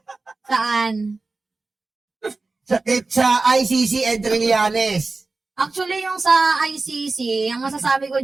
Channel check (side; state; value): left; quieter; 3.6 dB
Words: Saan? Sa ICC and Trillanes. Actually, yung sa ICC, ang masasabi ko